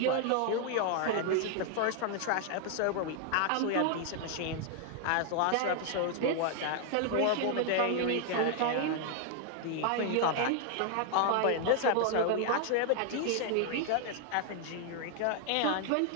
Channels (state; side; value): different; both; correlation 0.00